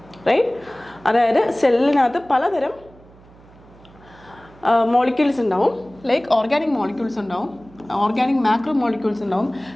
right. അതായത് സെല്ലിനകത്ത് പലതരം മോളിക്യൂൾസ് ഉണ്ടാവും, ലൈക്ക് ഓർഗാനിക് മോളിക്യൂൾസ് ഉണ്ടാവും, ഓർഗാനിക് മാക്രോ മോളിക്യൂൾസ് ഉണ്ടാവും,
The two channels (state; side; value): noise; right; hum, 25 dB below the sound